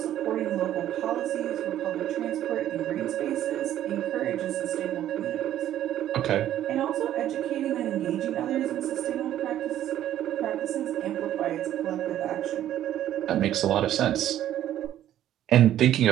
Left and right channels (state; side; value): quieter; left; 12.0 dB